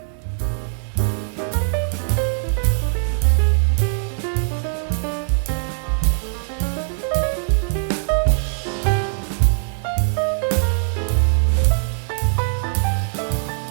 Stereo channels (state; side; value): silent; left; digital silence